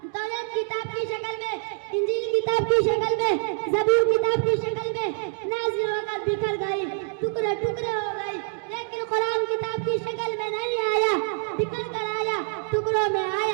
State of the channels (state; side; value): silent; left; 58 dB below the other